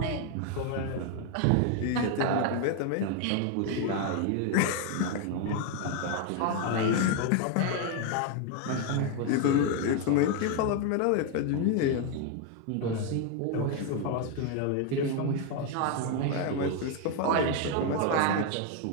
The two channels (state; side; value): different; both; correlation 0.01